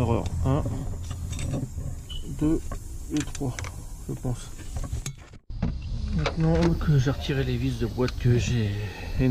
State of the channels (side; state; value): both; identical; correlation 1.00